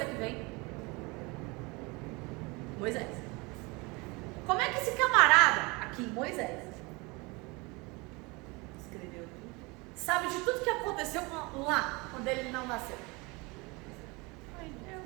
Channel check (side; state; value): left; quieter; 26.2 dB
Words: que vem Moisés. Como é que esse camarada aqui, Moisés, Escreveu tudo. sabe de tudo que aconteceu lá, quando ele não nasceu? Eu